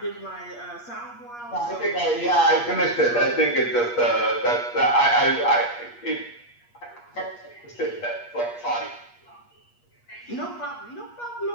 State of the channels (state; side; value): late; right; 8.4 ms